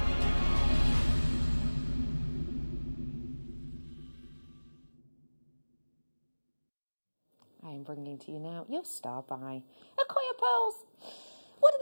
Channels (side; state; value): both; inverted; correlation -1.00